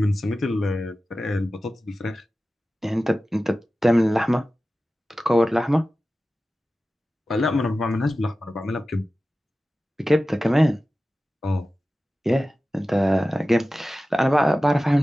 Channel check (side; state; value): both; normal; correlation 0.95